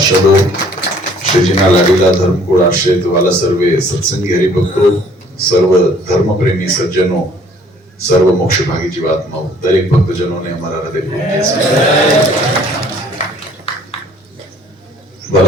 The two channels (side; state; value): both; normal; correlation 0.57